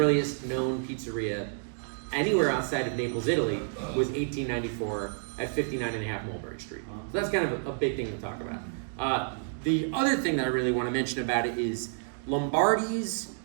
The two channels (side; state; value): left; silent; digital silence